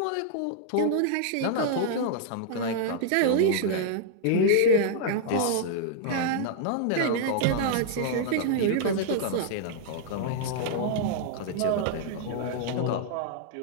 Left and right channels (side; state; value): both; different; correlation -0.01